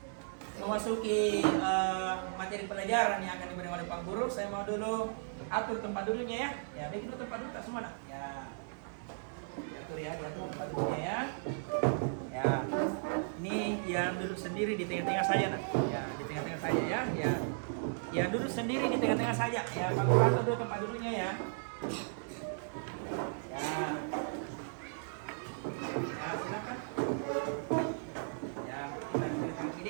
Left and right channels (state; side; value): silent; left; digital silence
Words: memasuki materi pelajaran yang akan diberikan oleh Pak Guru, saya mau dulu atur tempat duduknya ya. Ya, bikin dulu tempat duduk tak semua nak. Ya. Atur ya, diatur tempat duduknya ya. Ya. Ini yang duduk sendiri di tengah-tengah saja nak. Ya, di tengah-tengah saja ya. Ya. Ya, duduk sendiri di tengah-tengah saja. Ya, Pak Guru atur dulu tempat duduknya ya. Ya. Ya, silakan. Ya,